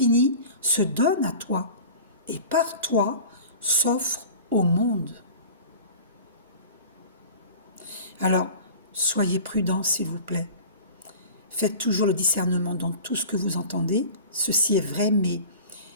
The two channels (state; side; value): inverted; both; correlation -0.40